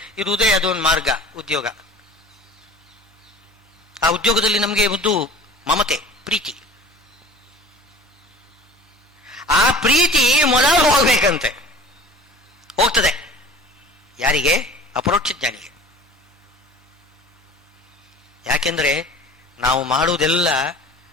ಇರುವುದೇ ಅದೊಂದು ಮಾರ್ಗ, ಉದ್ಯೋಗ. ಆ ಉದ್ಯೋಗದಲ್ಲಿ ನಮಗೆ ಒಂದು ಮಮತೆ, ಪ್ರೀತಿ. ಆ ಪ್ರೀತಿ ಮೊದಲು ಹೋಗ್ಬೇಕಂತೆ. ಹೋಗ್ತದೆ ಯಾರಿಗೆ? ಅಪರೋಕ್ಷ ಜ್ಞಾನಿಗೆ. ಯಾಕೆಂದ್ರೆ ನಾವು ಮಾಡುವುದೆಲ್ಲ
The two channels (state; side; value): normal; both; correlation 0.42